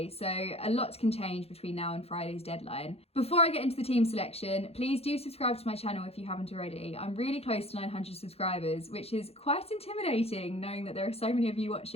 so a lot can change between now and Friday's deadline. Before I get into the team selection, please do subscribe to my channel if you haven't already. I'm really close to 900 subscribers, which is quite intimidating knowing that there are so many of you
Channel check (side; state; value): right; late; 0.29 ms